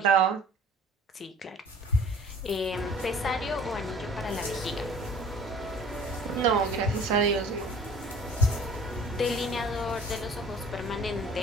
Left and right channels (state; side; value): normal; both; correlation 0.49